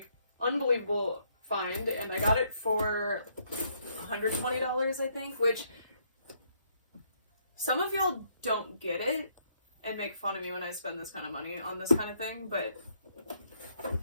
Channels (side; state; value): both; inverted; correlation -0.71